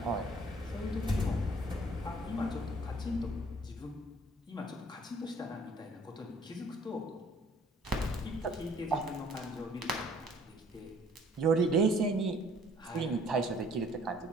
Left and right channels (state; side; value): normal; both; correlation 0.57